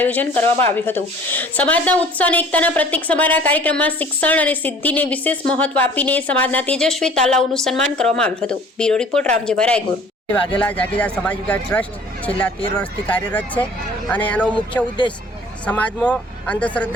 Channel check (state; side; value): normal; both; correlation 0.50